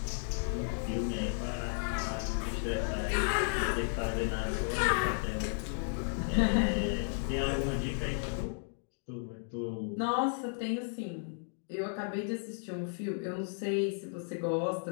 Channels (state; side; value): silent; right; 55 dB below the other